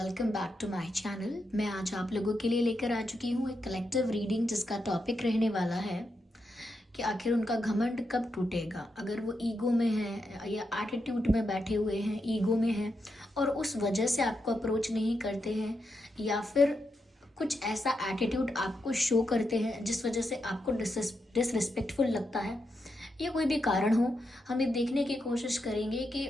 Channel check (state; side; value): normal; both; correlation 0.84